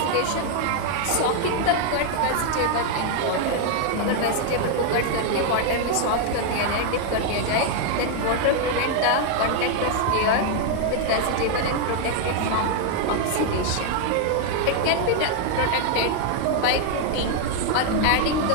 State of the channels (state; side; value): different; both; correlation 0.00